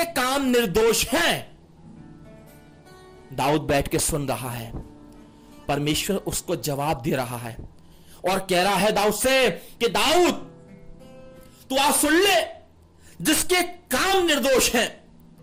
काम निर्दोष हैं। दाऊद बैठ के सुन रहा है, परमेश्वर उसको जवाब दे रहा है और कह रहा है दाऊद से कि दाऊद, तू आज सुन ले, जिसके काम निर्दोष हैं।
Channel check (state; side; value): identical; both; correlation 1.00